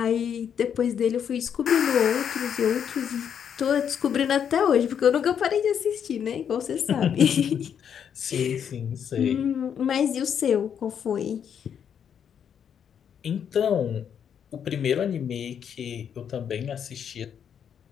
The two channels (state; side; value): quieter; right; 8.2 dB